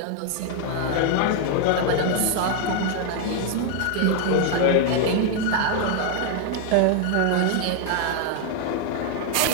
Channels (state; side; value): different; both; correlation 0.00